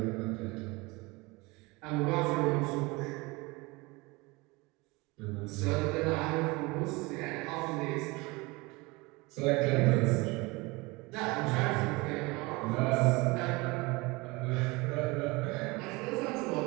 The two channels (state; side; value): quieter; left; 24.4 dB